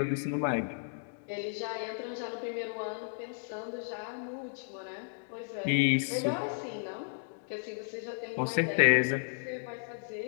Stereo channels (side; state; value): right; silent; digital silence